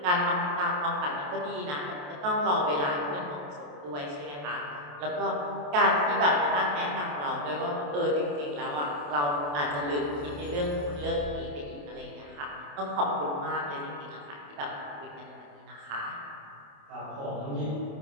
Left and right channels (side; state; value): left; late; 28 ms